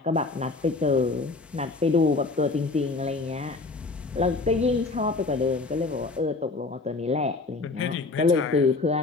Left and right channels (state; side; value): quieter; right; 3.7 dB